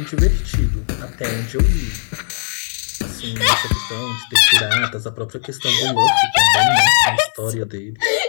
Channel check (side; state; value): right; silent; 61 dB below the other